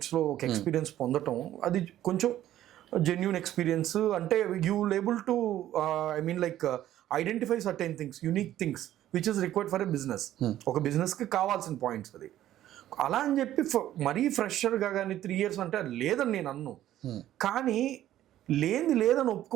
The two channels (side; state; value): left; quieter; 12.8 dB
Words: ఒక ఎక్స్పీరియన్స్ పొందటం, అది కొంచెం జెన్యున్ ఎక్స్పీరియన్స్. అంటే you able to I mean like identify certain things, unique things which is required for a business. ఒక బిజినెస్కి కావాల్సిన పాయింట్స్ అది. అలా అని చెప్పి మరీ ఫ్రెషర్గా కానీ 3 years అంటే లేదని నేను అన్ను, కానీ లేదని